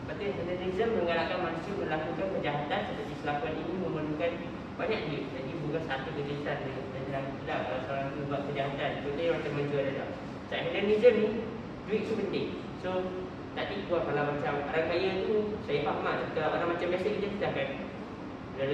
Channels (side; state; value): both; identical; correlation 1.00